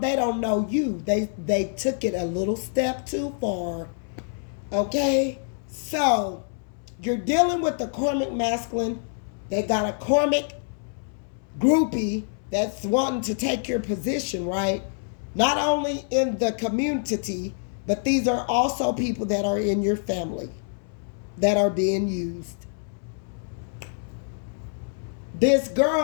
They don't know you. They took it a little step too far. Okay? So, you're dealing with the karmic masculine. They got a karmic groupie that's wanting to take your position, right? Not only in the community, but these are also people that are in your family that are being used. This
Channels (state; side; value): silent; right; 61 dB below the other